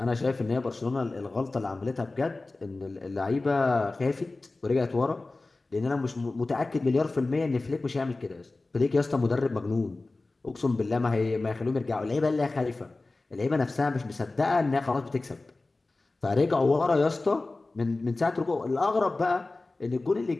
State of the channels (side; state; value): right; quieter; 3.3 dB